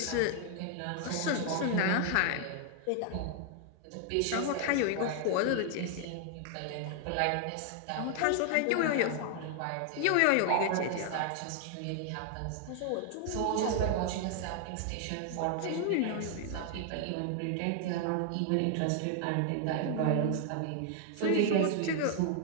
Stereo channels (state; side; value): different; both; correlation 0.00